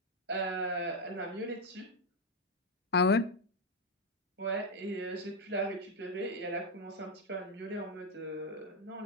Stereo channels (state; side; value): normal; both; correlation 0.03